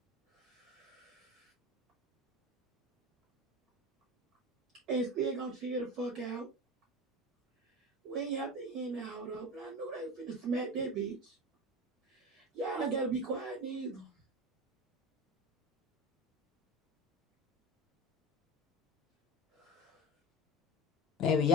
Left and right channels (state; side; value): normal; both; correlation 0.28